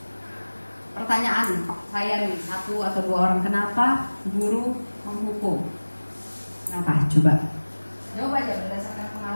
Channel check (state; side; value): inverted; both; correlation -1.00